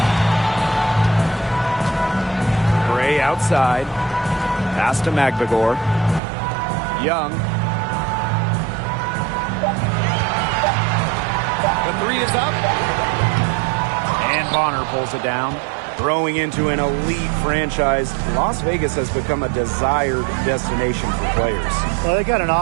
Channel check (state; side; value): drops out; left; at 6.2 s